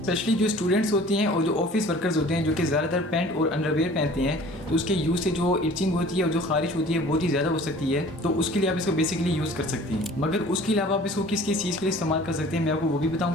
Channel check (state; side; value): normal; both; correlation 0.47